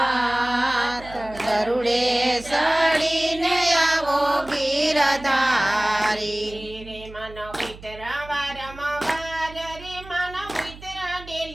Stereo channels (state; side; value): noise; right; hum, 17 dB below the sound